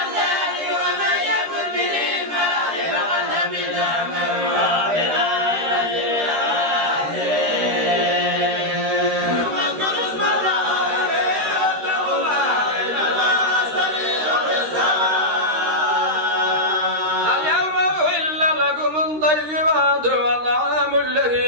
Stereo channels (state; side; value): late; left; 13 ms